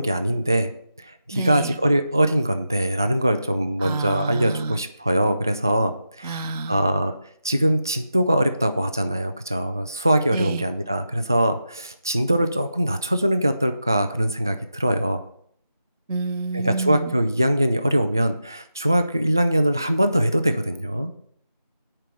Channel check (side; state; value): both; inverted; correlation -0.88